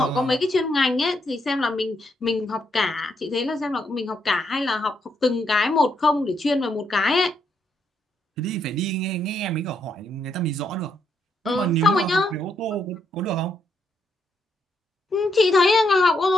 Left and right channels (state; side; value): normal; both; correlation 0.77